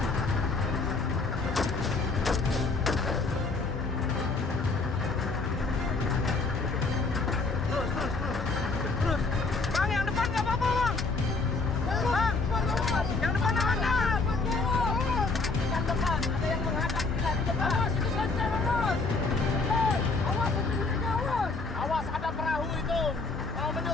Awas, ada perahu itu mau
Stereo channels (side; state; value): right; quieter; 3.8 dB